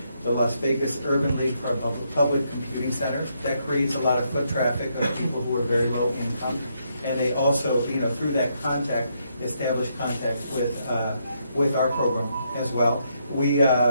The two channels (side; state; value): both; inverted; correlation -0.77